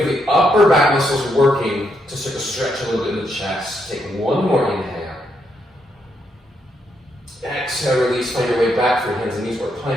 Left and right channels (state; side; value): normal; both; correlation 0.78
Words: of the upper back muscles working to sort of stretch a little bit in the chest. Take one more inhale. Exhale, release, find your way back through hands and knees or